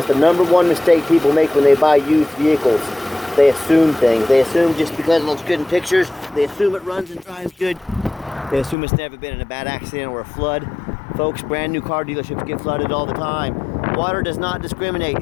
the #1 mistake people make when they buy used vehicles. They assume things. They assume just because it looks good in pictures, they assume it runs and drives good. They assume it's never been in a bad accident or a flood. Folks, brand new car dealerships get flooded all the time. Water does not discriminate.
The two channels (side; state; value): right; drops out; at 8.8 s